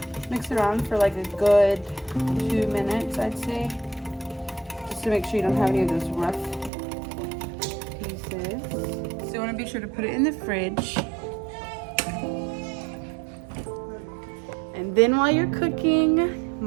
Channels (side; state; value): left; drops out; at 6.7 s